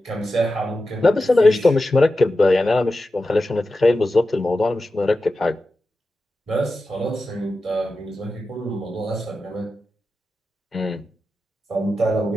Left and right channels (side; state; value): both; normal; correlation 0.92